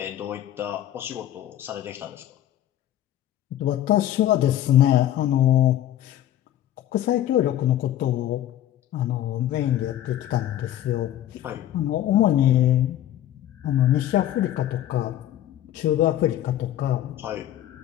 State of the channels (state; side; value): quieter; right; 12.3 dB